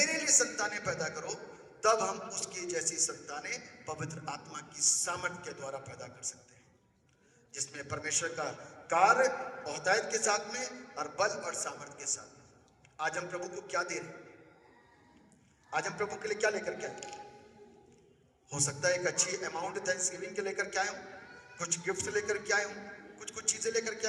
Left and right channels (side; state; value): both; identical; correlation 1.00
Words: लिए संतानें पैदा करो, तब हम उसकी जैसी संतानें पवित्र आत्मा की सामर्थ के द्वारा पैदा कर सकते हैं, जिसमें परमेश्वर का कार्य औहदायत के साथ में और बल और सामर्थ के साथ में। आज हम प्रभु को क्या दे रहे हैं? आज हम प्रभु के लिए क्या लेकर के आए? हो सकता है एक अच्छी अमाउंट थैंक्सगिविंग के लेकर के आए हूं, कुछ गिफ्ट लेकर के आए हूं, कुछ चीजें लेकर के